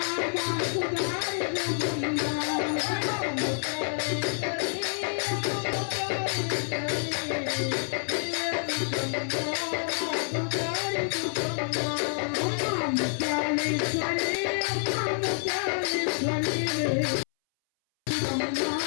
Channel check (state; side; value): silent; right; 59 dB below the other